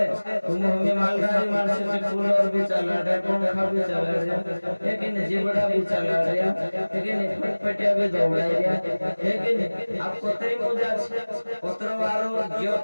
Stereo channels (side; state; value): both; inverted; correlation -1.00